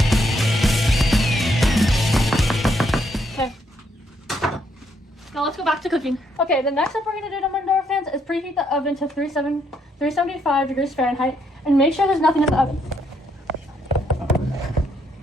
Okay. Now let's go back to cooking. Okay, the next step we're going to do, Dumb and Dumber fans, is preheat the oven to 375 degrees Fahrenheit and make sure there's nothing in the oven.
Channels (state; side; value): normal; both; correlation 0.73